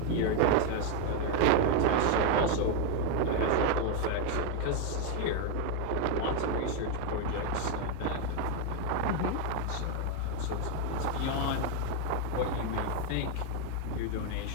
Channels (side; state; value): both; different; correlation 0.01